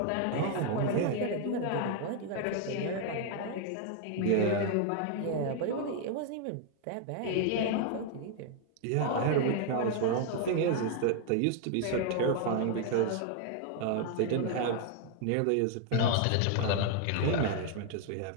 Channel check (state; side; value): different; both; correlation 0.00